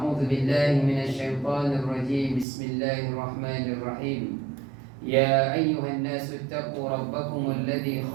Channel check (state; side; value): drops out; left; at 2.5 s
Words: بالله من الشيطان الرجيم، بسم الله الرحمن الرحيم. يا أيها الناس اتقوا ربكم الذي